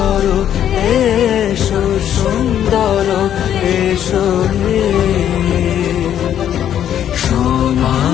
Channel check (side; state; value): right; quieter; 10.2 dB